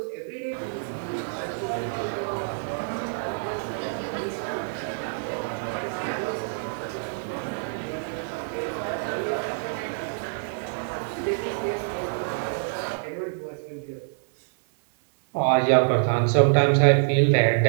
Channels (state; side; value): silent; left; digital silence